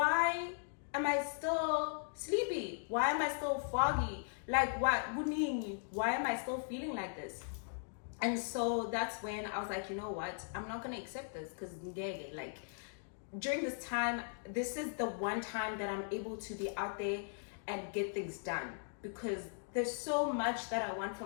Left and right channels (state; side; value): silent; right; digital silence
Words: am I still sleepy? Why am I still foggy? Why am I still feeling like this? And so that's when I was like, you know what? I'm not gonna accept this, because during this time, this is the one time that I'm able to be out there and get things done, because there's so much that I want